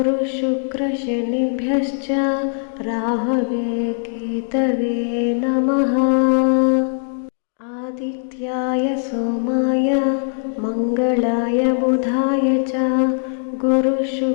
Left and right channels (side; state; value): right; silent; digital silence